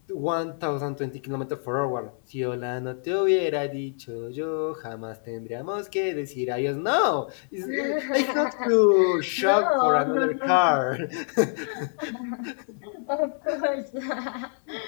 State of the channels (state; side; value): silent; right; 61 dB below the other